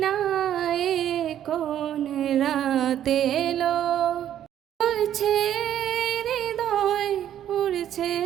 না এ কোন রাতে এলো উড়ছে হৃদয় উড়ছে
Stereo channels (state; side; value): quieter; left; 10.8 dB